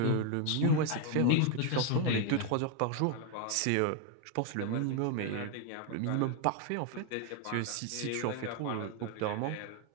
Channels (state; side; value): different; both; correlation 0.01